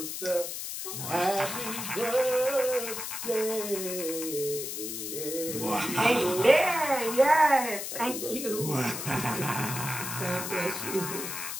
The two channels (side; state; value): left; noise; hiss, 5 dB below the sound